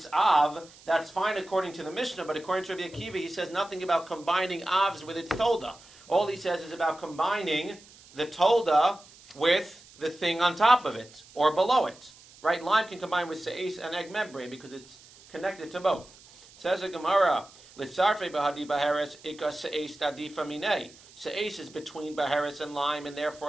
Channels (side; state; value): right; noise; hiss, 23 dB below the sound